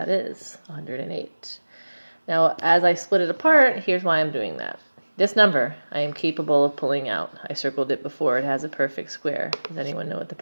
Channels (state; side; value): inverted; both; correlation -1.00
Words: is, 108. Now, as I split it apart, here's why I'm doing that. This number, I am capable of pulling out. I circled it before. It has a perfect square. Does anyone know what the